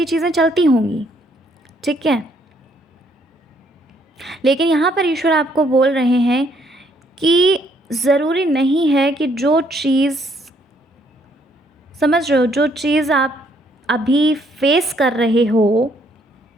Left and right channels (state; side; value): normal; both; correlation 0.68